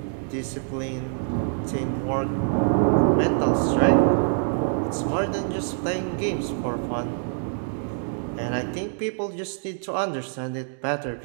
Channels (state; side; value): silent; left; digital silence